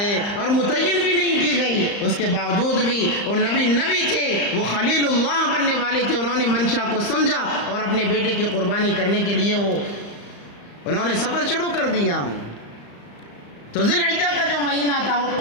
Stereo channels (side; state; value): right; late; 35 ms